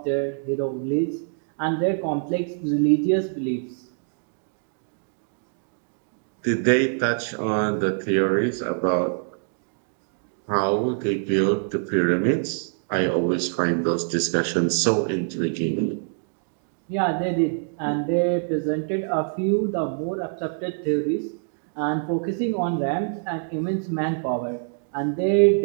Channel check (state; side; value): silent; left; digital silence